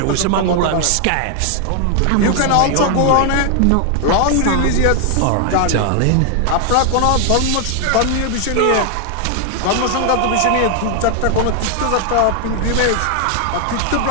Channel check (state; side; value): different; both; correlation 0.00